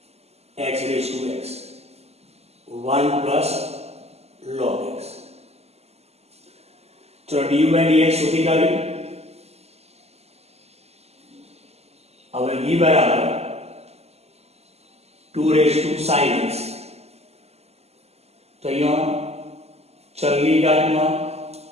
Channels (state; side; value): late; left; 0.30 ms